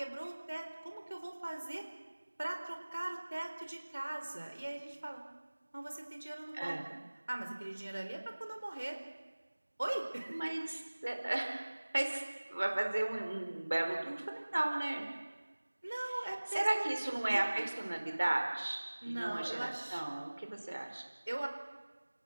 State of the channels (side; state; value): both; inverted; correlation -1.00